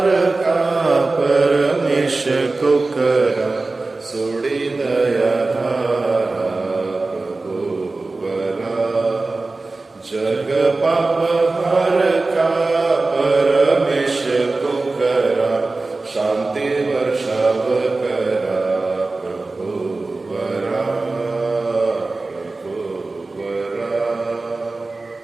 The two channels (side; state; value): left; quieter; 3.4 dB